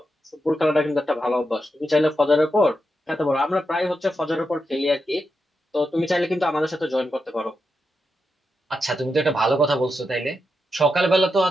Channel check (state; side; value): normal; both; correlation 0.86